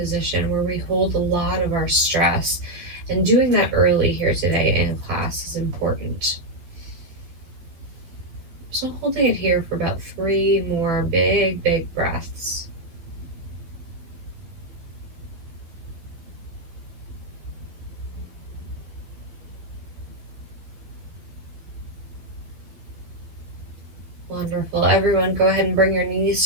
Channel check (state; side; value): late; left; 12 ms